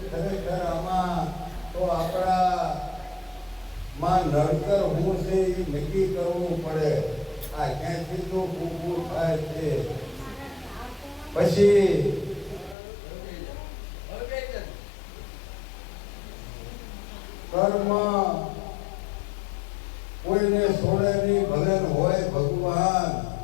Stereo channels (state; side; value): drops out; right; at 12.8 s